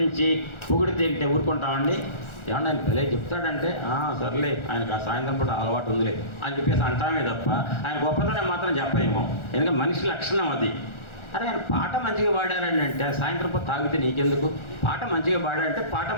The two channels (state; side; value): late; right; 1.4 ms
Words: పొగిడితే ఊరుకుంటామండి? ఏమన్నా ఆయన భలే చెప్తాడంటే సర్లే ఆయనకు ఆ సాయంత్రం పూట అలవాటు ఉందిలే అని చెప్పేసి అంటామే తప్ప ఆయన గొప్పతనం మాత్రం చెప్పలేమో. ఎందుకంటే మనిషి లక్షణం అది. అరే ఆయన పాట మంచిగా పాడారని అంటే సాయంత్రం పూట తాగితే నీకెందుకు? పాట మంచిగా పాడాడంటే పాట